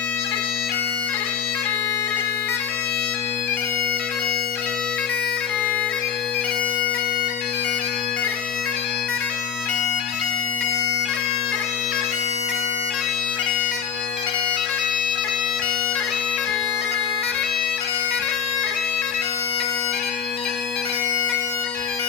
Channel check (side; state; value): right; quieter; 7.8 dB